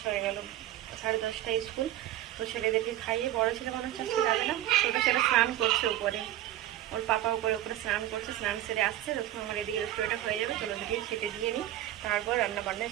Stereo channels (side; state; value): left; quieter; 13.3 dB